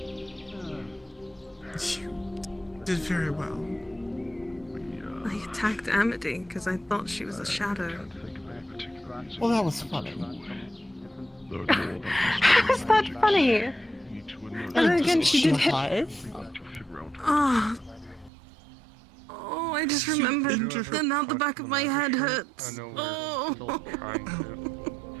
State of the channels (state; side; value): drops out; left; at 18.3 s